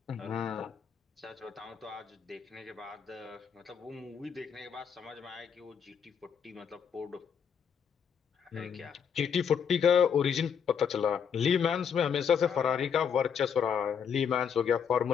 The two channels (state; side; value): quieter; right; 7.3 dB